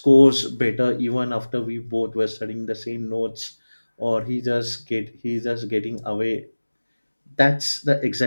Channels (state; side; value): inverted; both; correlation -1.00